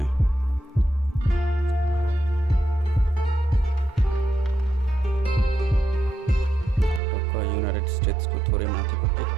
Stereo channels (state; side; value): drops out; left; at 7.0 s